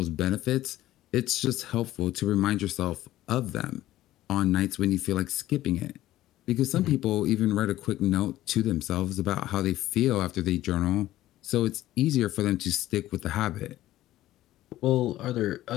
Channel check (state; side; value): quieter; right; 14.9 dB